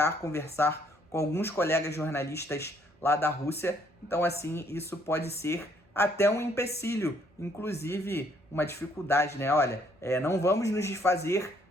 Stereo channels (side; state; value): both; normal; correlation 0.66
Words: conversar com alguns colegas jornalistas lá da Rússia. Então, assim, isso pode ser até um empecilho, inclusive uma dificuldade, né? Olha, não vamos nos desfazer